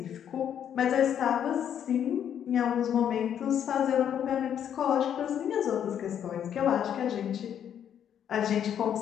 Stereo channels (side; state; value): right; quieter; 9.2 dB